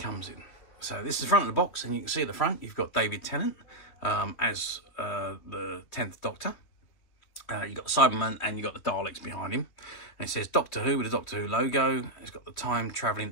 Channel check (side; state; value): right; late; 3.1 ms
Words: in. So this is the front of the box, and you can see at the front you've got David Tennant as the 10th Doctor. You've got Cyberman and you've got the Daleks behind him. And it says Doctor Who with a Doctor Who logo. It's got the time